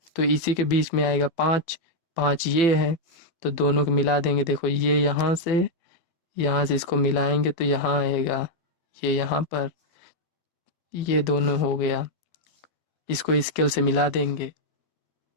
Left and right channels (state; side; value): late; right; 12 ms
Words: तो इसी के बीच में आएगा 5, 5 ये है, तो दोनों को मिला देंगे। देखो ये यहाँ से इसको मिलाएंगे तो यहाँ आएगा, ये यहाँ पर, ये दोनों हो गया। इसको स्केल से मिला देंगे,